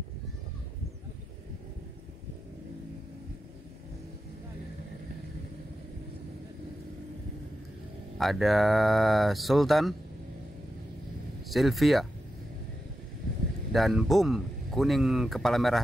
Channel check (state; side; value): normal; both; correlation 0.90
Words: Ada Sultan, Sylvia, dan Boom kuning kepala